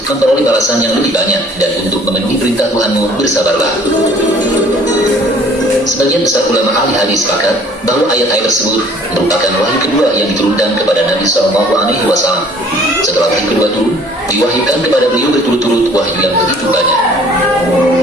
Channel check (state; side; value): normal; both; correlation 0.54